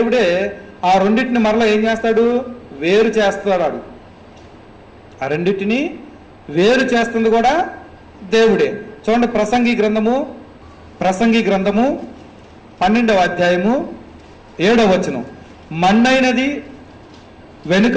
ఆ రెండింటిని మరలా ఏం చేస్తాడు? వేరు చేస్తాడు. ఆ రెండింటిని వేరు చేస్తుంది కూడా దేవుడే. చూడండి, ప్రసంగి గ్రంథము 12వ అధ్యాయము 7వ వచనం. మన్నైనది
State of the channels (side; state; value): both; identical; correlation 1.00